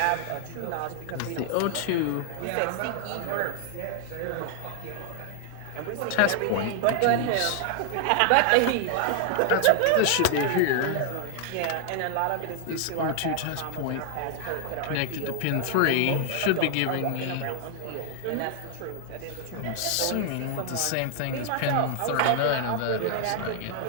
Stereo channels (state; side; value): different; both; correlation 0.00